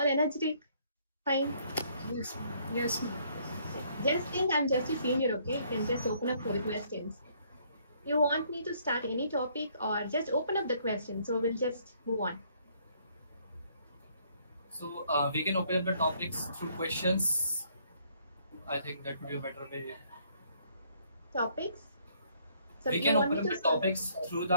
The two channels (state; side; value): inverted; both; correlation -0.65